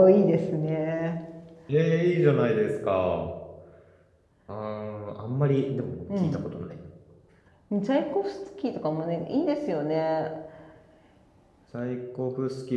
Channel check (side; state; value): both; identical; correlation 1.00